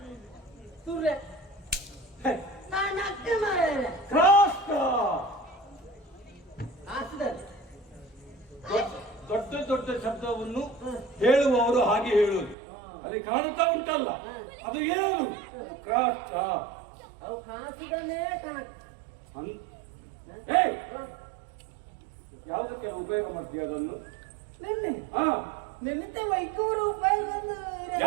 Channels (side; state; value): left; drops out; at 12.6 s